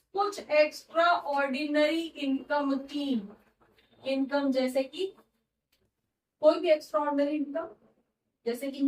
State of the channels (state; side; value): identical; both; correlation 1.00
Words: कुछ एक्स्ट्रा ऑर्डिनरी इनकम थी, इनकम जैसे कि कोई भी एक्स्ट्रा ऑर्डिनरी इनकम, जैसे कि